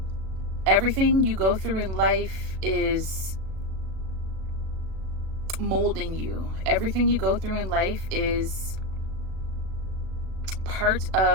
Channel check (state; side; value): late; left; 36 ms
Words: Everything you go through in life is molding you. Everything you go through in life is part